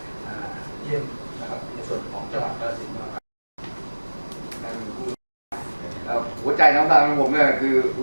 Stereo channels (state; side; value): inverted; both; correlation -1.00